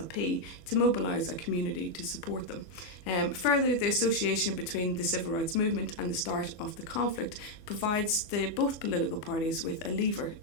to mobilise a community to support them. Further, the association between the civil rights movement and the start of the conflict provides both political parties with a lever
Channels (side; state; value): right; late; 24 ms